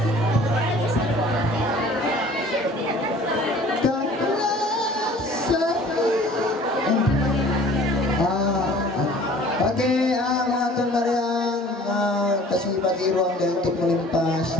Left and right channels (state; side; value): normal; both; correlation 0.49